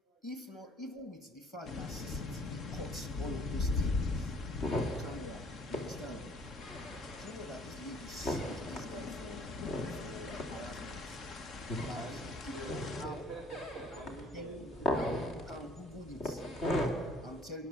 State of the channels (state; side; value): normal; both; correlation 0.58